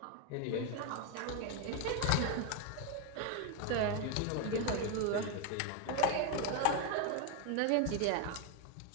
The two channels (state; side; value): different; both; correlation 0.02